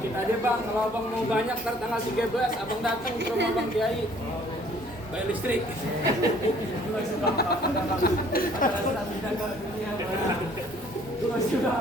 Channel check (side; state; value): both; normal; correlation 0.58